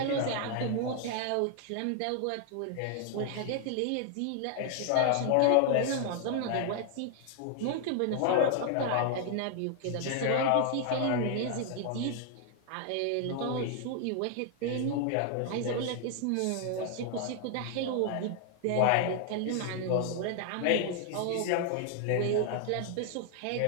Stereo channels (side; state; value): both; different; correlation 0.00